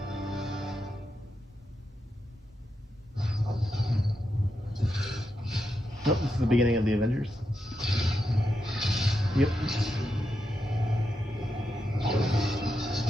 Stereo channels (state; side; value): normal; both; correlation 0.86